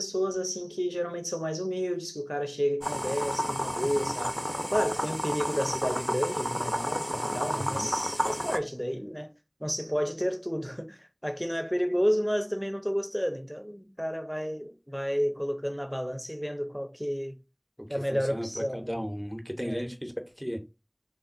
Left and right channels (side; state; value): both; identical; correlation 1.00